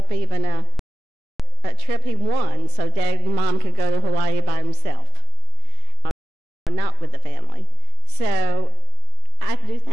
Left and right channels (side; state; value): both; normal; correlation 0.73